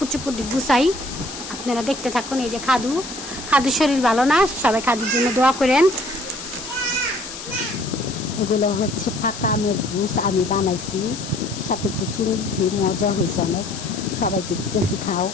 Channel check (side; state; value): left; noise; hiss, 11 dB below the sound